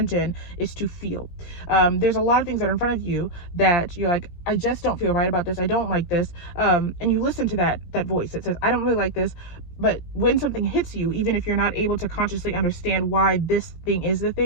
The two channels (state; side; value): late; right; 17 ms